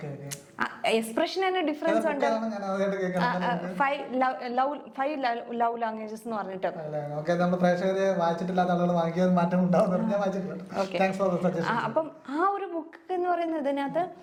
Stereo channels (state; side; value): identical; both; correlation 1.00